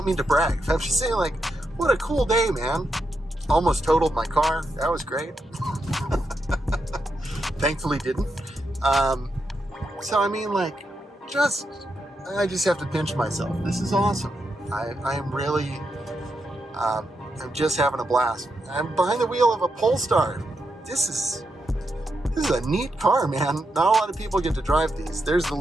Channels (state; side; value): normal; both; correlation 0.84